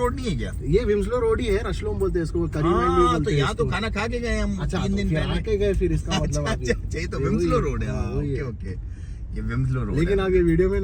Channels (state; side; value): identical; both; correlation 1.00